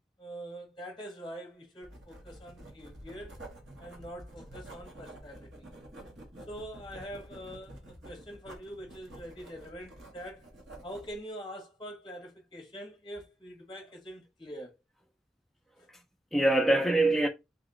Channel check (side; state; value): both; normal; correlation 0.85